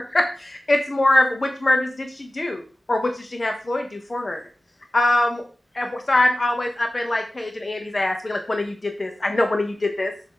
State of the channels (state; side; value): normal; both; correlation 0.96